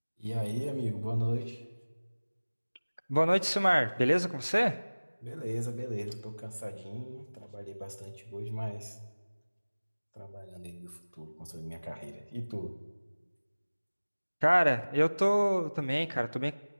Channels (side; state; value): both; inverted; correlation -1.00